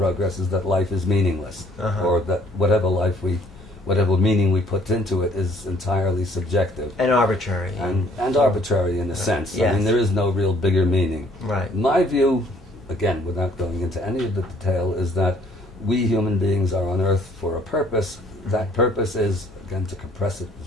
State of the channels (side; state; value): both; normal; correlation 0.60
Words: is that life is meaningless, or that whatever meaning we put into it is entirely subjective And arbitrary. and arbitrary in a sense. Yes. I mean, there is no real bigger meaning. Right. My view, again, without going into any of the detail, is that we human beings are on Earth for a purpose. That purpose is, again, to compress it